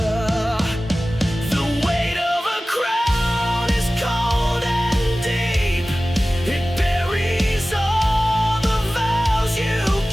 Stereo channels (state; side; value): normal; both; correlation 0.96